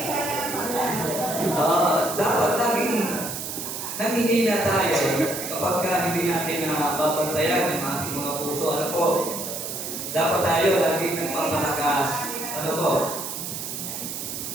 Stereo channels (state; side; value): noise; right; hiss, 6 dB below the sound